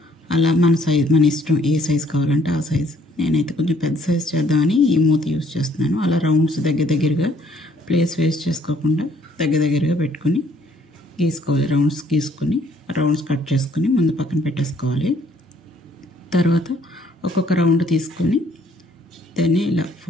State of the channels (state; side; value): normal; both; correlation 0.63